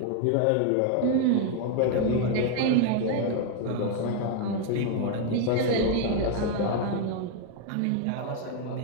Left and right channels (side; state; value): both; different; correlation 0.00